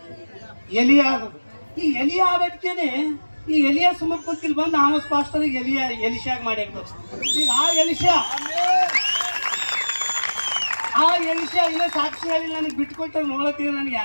ಎಲಿಯ ಆದ್ರು. ಈ ಎಲಿಯ ಆಗೋದಕ್ಕೇನೆ ಈ ಎಲಿಯ ಸುಮ್ಮನೆ ಕುಂತಿಲ್ ಬಂದು ಆಮಸ್ ಪಾಸ್ಟರ್ ಎಲಿಶಾಗ ಮಾಡಿರ್ಬೇಕು. ಈಗ ಆ ಎಲಿಶಾ ಇಲ್ಲ ಸಾಕ್ಷಿ ಹೇಳಿ ನನಗೆ ಬಿಟ್ಕೊಟ್ಟ ನೋಡತ್ತೀವಿ, ನನಗೆ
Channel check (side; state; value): both; inverted; correlation -1.00